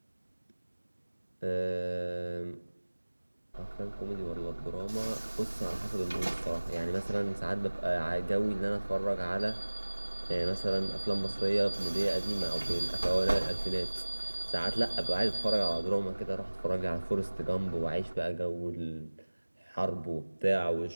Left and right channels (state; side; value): inverted; both; correlation -1.00